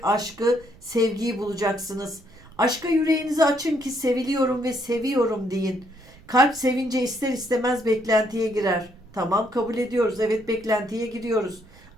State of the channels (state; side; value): noise; right; rumble, 24 dB below the sound